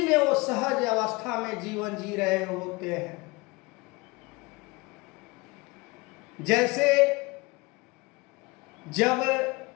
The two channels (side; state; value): right; quieter; 24.4 dB